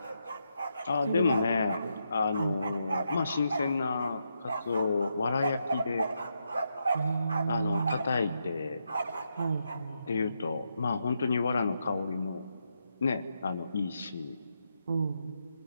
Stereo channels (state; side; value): inverted; both; correlation -0.82